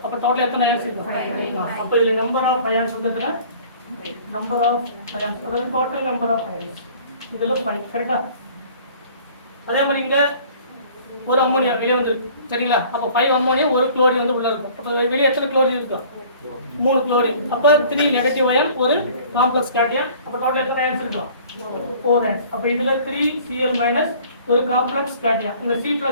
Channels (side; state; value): both; inverted; correlation -0.50